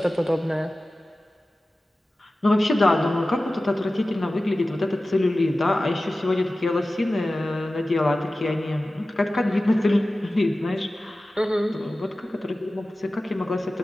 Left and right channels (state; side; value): normal; both; correlation 0.96